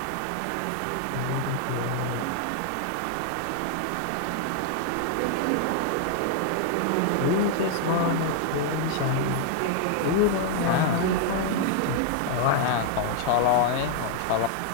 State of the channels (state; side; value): different; both; correlation 0.00